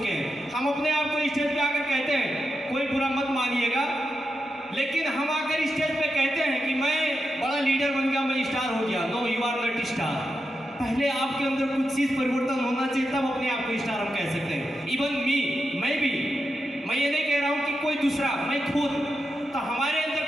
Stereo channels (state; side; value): normal; both; correlation 0.87